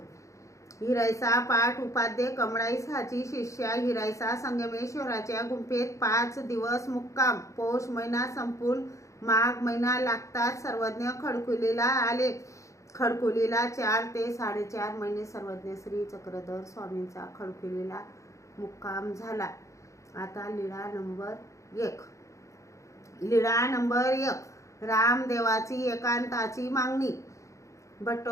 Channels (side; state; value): right; late; 0.15 ms